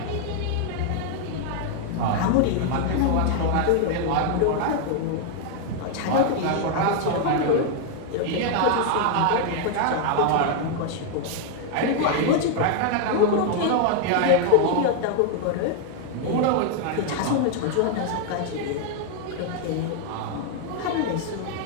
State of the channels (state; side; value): different; both; correlation 0.00